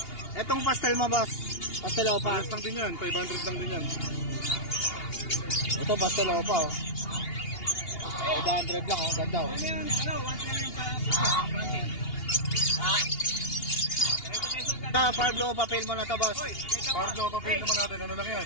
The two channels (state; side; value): late; right; 2.8 ms